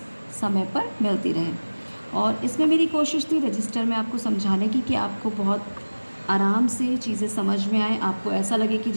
समय पर मिलती रहें। और इसमें मेरी कोशिश थी रजिस्टर में आपको समझाने की कि आपको बहुत आराम से चीज़ें समझ में आए, आपको ऐसा लगे कि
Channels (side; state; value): both; inverted; correlation -1.00